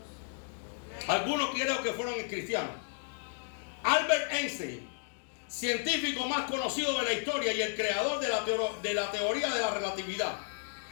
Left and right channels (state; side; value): silent; right; digital silence